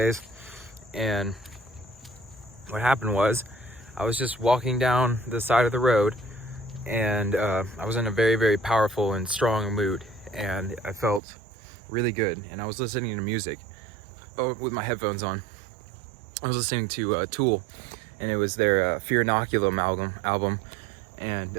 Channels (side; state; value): left; drops out; at 11.2 s